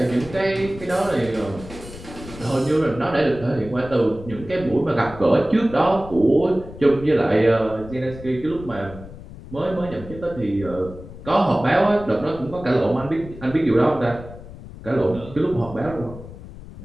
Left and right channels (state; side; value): noise; left; rumble, 15 dB below the sound